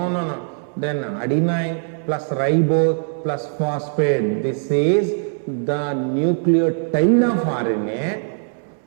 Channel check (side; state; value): left; silent; 65 dB below the other